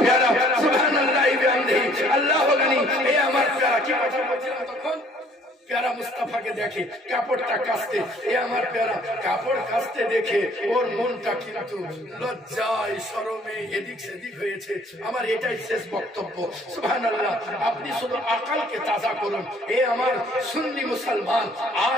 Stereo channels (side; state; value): both; normal; correlation 0.58